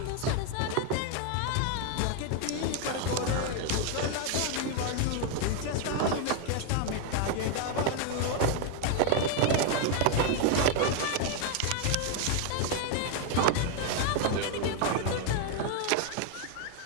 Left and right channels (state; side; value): different; both; correlation 0.01